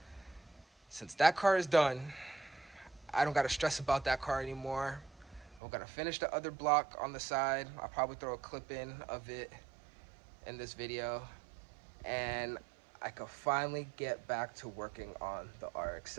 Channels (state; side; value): drops out; left; at 5.6 s